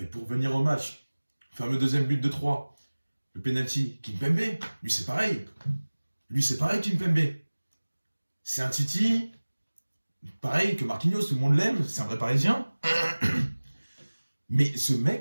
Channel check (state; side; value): inverted; both; correlation -1.00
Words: pour venir au match, le fameux deuxième but de 3, le penalty, Kimpembe, lui c'est pareil. Kimpembe. C'est un Titi, pareil que Marquinhos, tout le monde l'aime, c'est un vrai Parisien. Mais ce